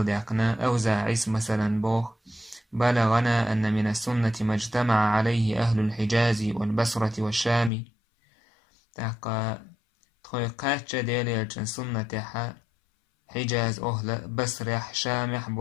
ديقنا أوزع عيس مثلا بوخ بلغنا أن من السنة ما اجتمع عليه أهل الحجاز والبصرة والشام تحقا تخيقات ديالي السنة حجاز أهل بصرح شامح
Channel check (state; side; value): drops out; right; at 7.7 s